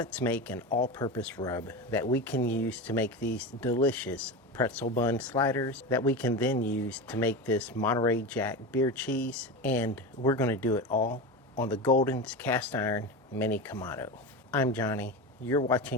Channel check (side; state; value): both; normal; correlation 0.23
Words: make an all-purpose rub that we can use to make these delicious pretzel bun sliders that we can then use to make this Monterey Jack beer cheese, and we're going to do it all on the Golden's cast iron mini Kamado. I'm Johnny. You're